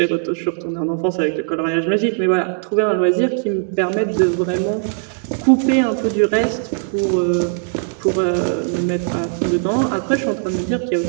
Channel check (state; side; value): silent; left; digital silence